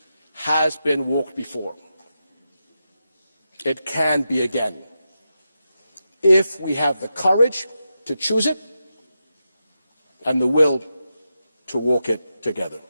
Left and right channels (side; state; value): both; inverted; correlation -0.88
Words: has been walked before. It can be again, if we have the courage to choose it and the will to walk it together.